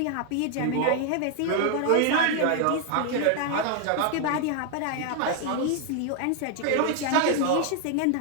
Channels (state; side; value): different; both; correlation 0.00